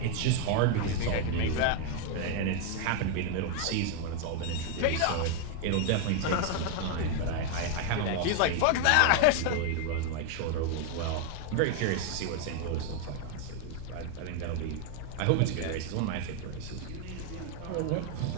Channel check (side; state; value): both; different; correlation 0.00